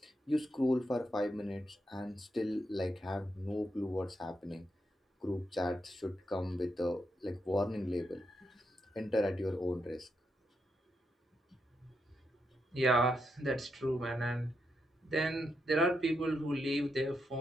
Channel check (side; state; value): both; normal; correlation 0.83